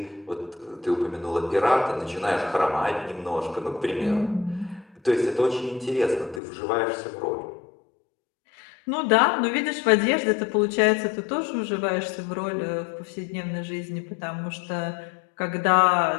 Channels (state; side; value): drops out; right; at 6.4 s